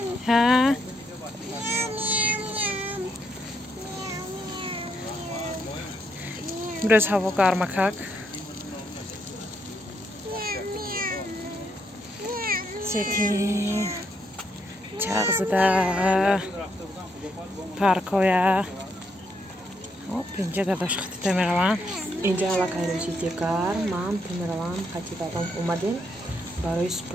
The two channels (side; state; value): both; normal; correlation 0.76